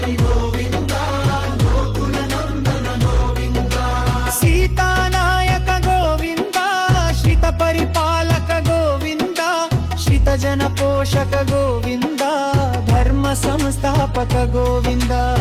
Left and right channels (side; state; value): both; identical; correlation 1.00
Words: గోవింద గోకుల నందన గోవింద సీతానాయక గోవింద శ్రిత పరిపాలక గోవింద శ్రిత జన పోషక గోవింద ధర్మ సంస్థాపక గోవింద